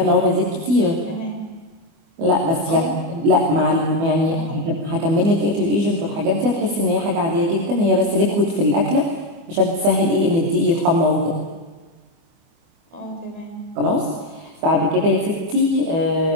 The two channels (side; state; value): left; late; 24 ms